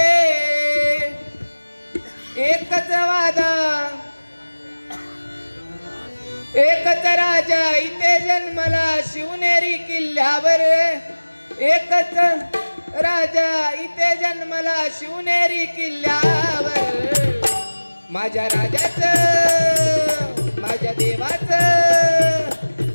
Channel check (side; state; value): both; inverted; correlation -1.00